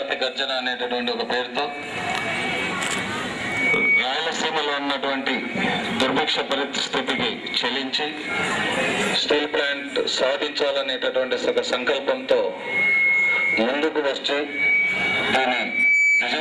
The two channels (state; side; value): identical; both; correlation 1.00